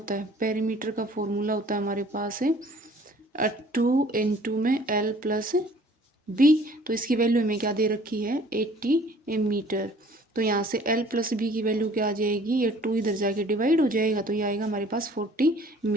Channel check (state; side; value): normal; both; correlation 0.53